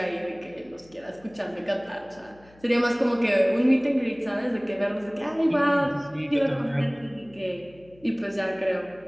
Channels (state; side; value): noise; left; hum, 27 dB below the sound